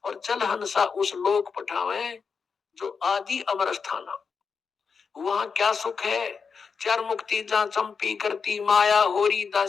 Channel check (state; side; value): quieter; right; 5.6 dB